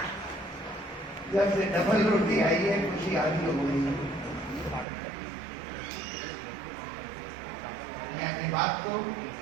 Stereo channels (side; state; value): left; drops out; at 4.9 s